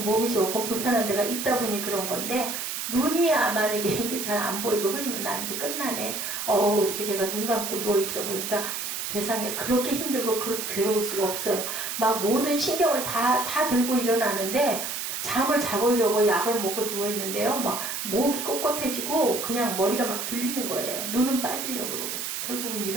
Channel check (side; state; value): right; noise; hiss, 4 dB below the sound